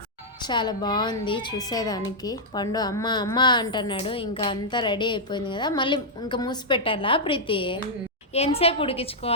చాలా బాగుంది చూసేదానికి. పండు అమ్మ అమ్మ అంటున్నాడు. ఇంకా అంతా రెడీ అయిపోయింది కదా, మళ్ళీ ఇంకా మూసి పెట్టాలా ప్రీతి? ఎంతసేపు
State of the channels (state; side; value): normal; both; correlation -0.06